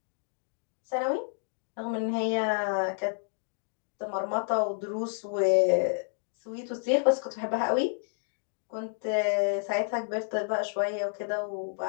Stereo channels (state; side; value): silent; right; 58 dB below the other